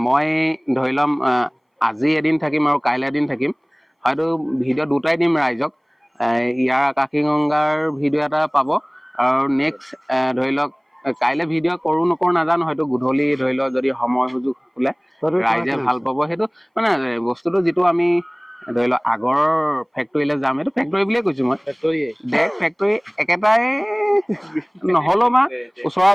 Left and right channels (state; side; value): identical; both; correlation 1.00